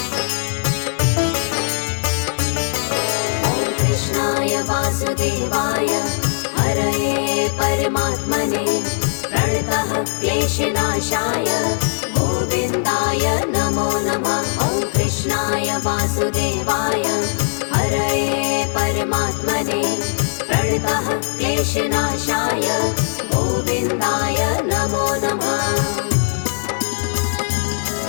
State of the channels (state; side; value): silent; right; digital silence